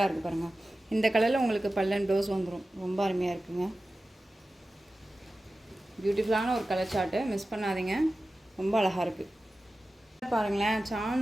இருக்குது பாருங்கள். இந்த கலரில் உங்களுக்கு பல்லன் ப்ளவுஸ் வந்துடும், ரொம்ப அருமையாக இருக்குங்க. பியூட்டிஃபுல்லான ஒரு கலர் சார்ட்டு, மிஸ் பண்ணாதீங்க, ரொம்ப அழகாக இருக்குது பாருங்களேன்.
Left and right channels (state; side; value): normal; both; correlation 0.95